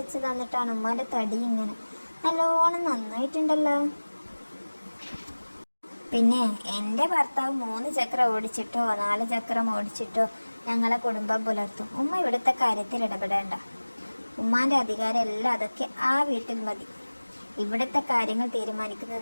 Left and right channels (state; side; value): inverted; both; correlation -1.00